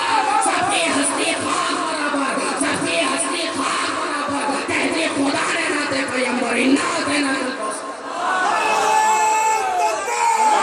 سب کی ہستی خاک برابر، سب کی ہستی خاک برابر، کہتی خدا نے ناتے پیمبر ناتے ناتے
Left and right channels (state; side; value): identical; both; correlation 1.00